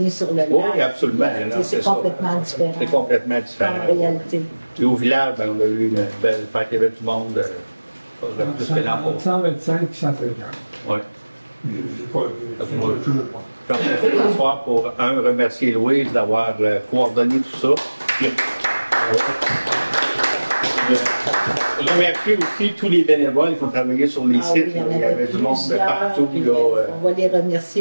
sur le lac. Oui, absolument. C'est complètement différent. C'est complètement différent. En réalité. Et au village, on a eu une belle fête, il y avait du monde. Plus que l'an passé. 125 et 150. Oui. J'en profite ce soir pour, remercier Louise d'avoir coordonné tout ça. Je remercie aussi tous les bénévoles qui ont travaillé sur les sites. Il y avait du monde de partout. On va les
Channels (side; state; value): both; inverted; correlation -1.00